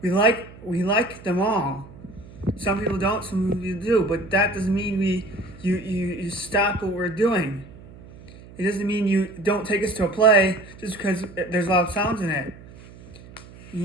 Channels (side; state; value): right; noise; hum, 19 dB below the sound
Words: We like them all. Some people don't, some people do, but that doesn't mean you stop what we're doing. It doesn't mean you don't take us to a play just because there's loud sounds in it.